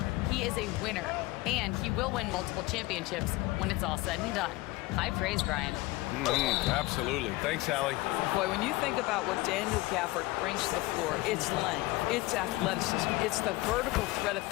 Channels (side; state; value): right; quieter; 20.4 dB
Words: He is a winner, and he will win multiple championships when it's all said and done. High praise, Brian. Absolutely. Thanks, Allie. Boy, when you think about what Daniel Gafford brings to the floor, it's length, it's athleticism, it's the vertical threat at